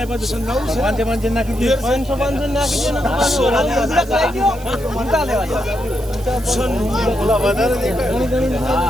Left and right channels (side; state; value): right; noise; hiss, 20 dB below the sound